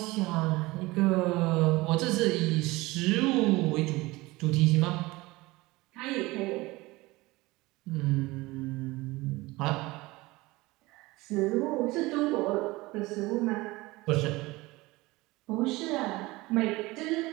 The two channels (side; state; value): left; quieter; 21.1 dB